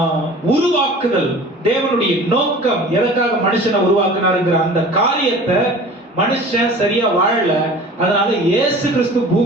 உருவாக்குதல் தேவனுடைய நோக்கம், எதற்காக மனுஷனை உருவாக்குனாருங்கிற அந்த காரியத்தை மனுஷன் சரியா வாழல. அதனால இயேசு கிறிஸ்து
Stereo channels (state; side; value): normal; both; correlation 0.42